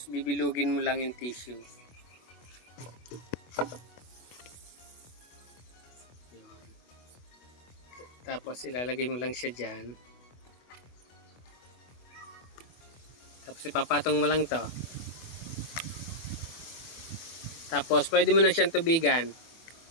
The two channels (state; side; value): late; right; 24 ms